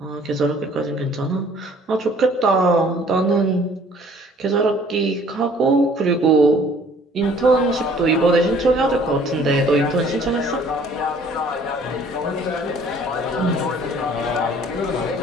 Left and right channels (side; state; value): both; normal; correlation 0.55